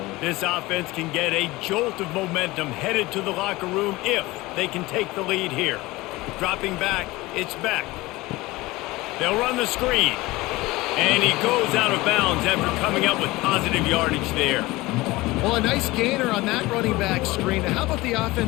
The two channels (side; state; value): right; quieter; 20.3 dB